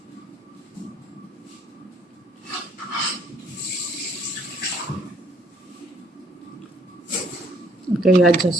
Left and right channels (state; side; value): normal; both; correlation 0.64